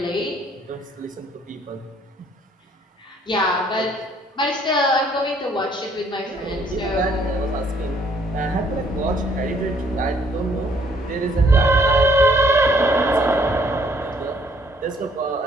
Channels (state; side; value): normal; both; correlation 0.64